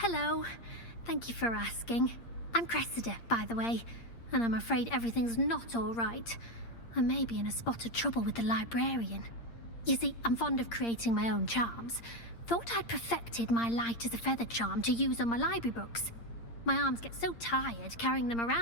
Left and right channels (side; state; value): right; late; 8.7 ms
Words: Thank you for asking. I'm Cressida, by the way, and I'm afraid everything's not all right. I may be in a spot of trouble with the librarian. You see, I'm fond of creating my own charms. Thought I'd perfected my light as a feather charm to use on my library books. My arms get so tired carrying them